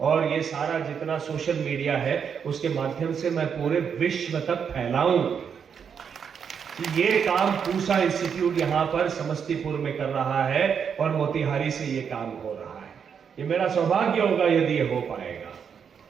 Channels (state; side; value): quieter; left; 7.1 dB